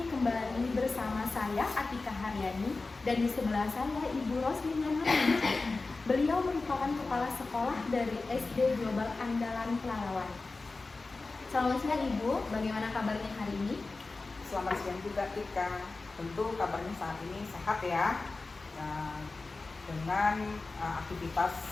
kembali bersama saya Atika Haryani dan di sebelah saya Ibu Roslina Nurhaliza. Beliau merupakan kepala sekolah dari SD Global Andalan Pelalawan. Selamat siang Ibu, bagaimana kabarnya hari ini? Selamat siang juga Tika. Tentu kabarnya saat ini sehat ya. Dengan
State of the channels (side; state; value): right; quieter; 3.7 dB